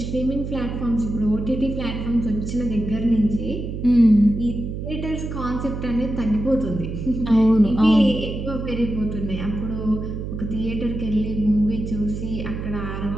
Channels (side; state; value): right; noise; hum, 6 dB below the sound